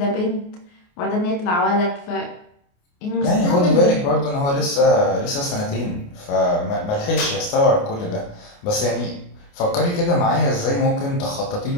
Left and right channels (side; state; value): right; late; 29 ms